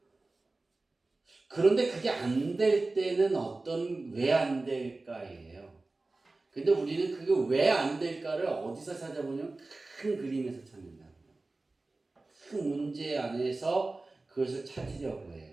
그런데 그게 안 될 때는 왜 안 될까예요. 근데 우리는 그게 왜 안 될까를 어디서 찾아보냐면 큰 그림에서 찾는다고요. 큰 문제 안에서 그것을 찾으려고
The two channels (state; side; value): quieter; left; 3.3 dB